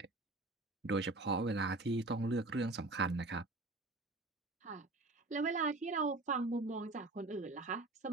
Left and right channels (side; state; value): left; quieter; 3.0 dB